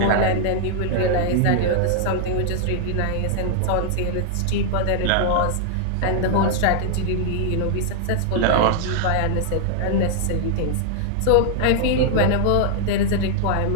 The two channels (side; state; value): both; different; correlation -0.01